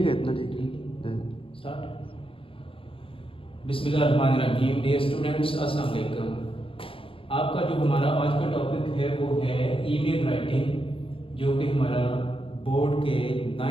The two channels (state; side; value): late; right; 0.26 ms